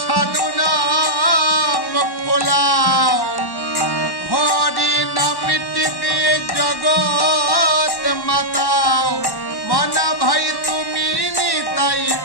সাধু নাম ফলাও হরি নামটি দিয়ে জগৎ মাতাও মানা ভাই তুমি নিতাই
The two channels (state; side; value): late; right; 1.1 ms